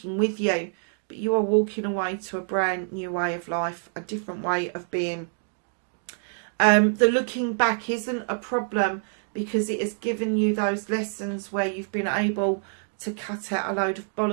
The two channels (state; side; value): silent; left; 61 dB below the other